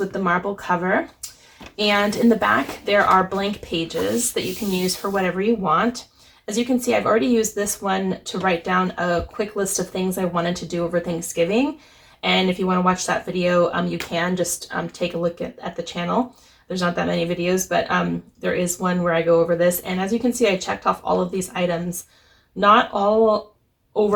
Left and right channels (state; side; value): identical; both; correlation 1.00